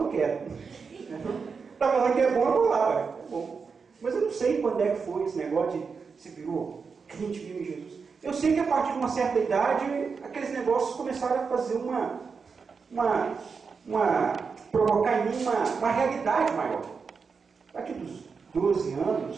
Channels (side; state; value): left; quieter; 5.3 dB